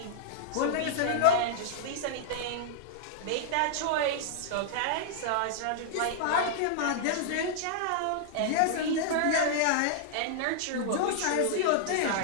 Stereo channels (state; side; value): different; both; correlation -0.01